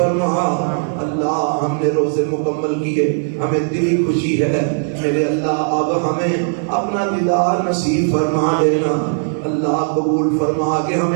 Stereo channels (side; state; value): left; silent; 68 dB below the other